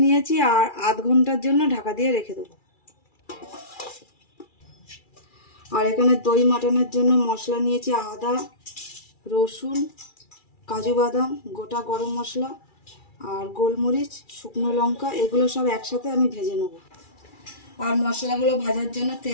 নিয়েছি, আর আধ ঘন্টার জন্য ঢাকা দিয়ে রেখে দেবো। আর এখানে দই মাটনের জন্য মশলা নিয়েছি আদা, রসুন, কাজু বাদাম, গোটা গরম মশলা আর গোলমরিচ, শুকনো লঙ্কা, এগুলো সব একসাথে আমি ভেজে নেব। আর মশলাগুলো ভাজার জন্য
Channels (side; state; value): right; late; 2.3 ms